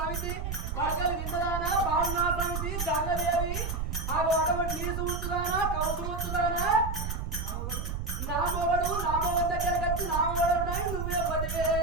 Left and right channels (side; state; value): right; noise; rumble, 4 dB below the sound